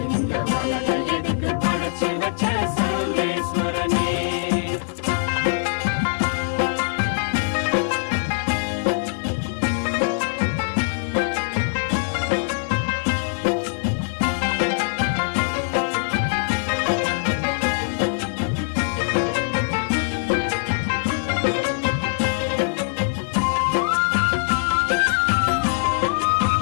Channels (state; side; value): silent; right; digital silence